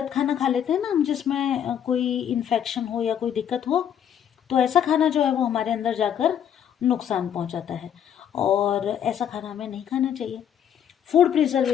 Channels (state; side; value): quieter; right; 9.2 dB